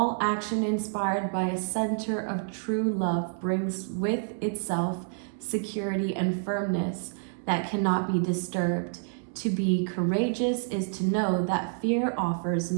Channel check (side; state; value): left; silent; digital silence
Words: action inspired by a center of true love brings with itself security and firmness that cannot be disturbed. To be courageous is to know that fear offers